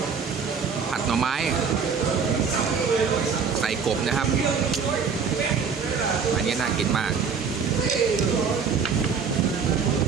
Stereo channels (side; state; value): left; quieter; 6.0 dB